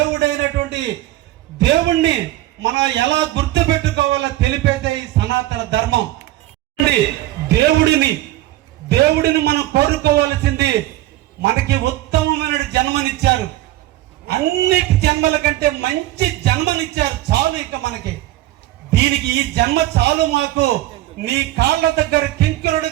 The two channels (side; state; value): left; quieter; 15.7 dB